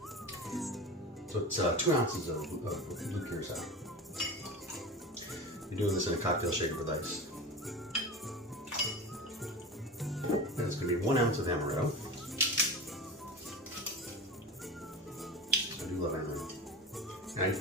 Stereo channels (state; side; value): normal; both; correlation 0.29